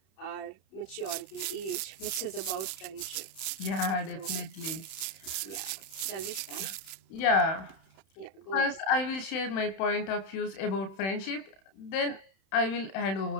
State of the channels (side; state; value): right; late; 31 ms